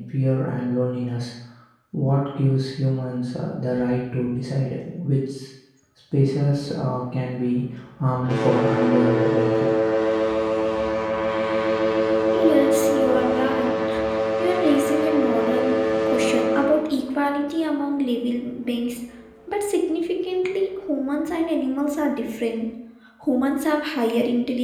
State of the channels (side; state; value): both; identical; correlation 1.00